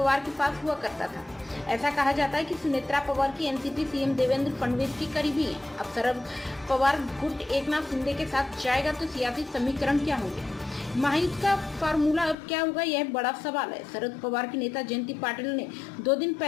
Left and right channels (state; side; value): drops out; right; at 12.4 s